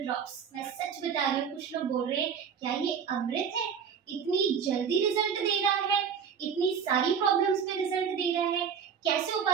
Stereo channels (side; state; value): left; quieter; 7.1 dB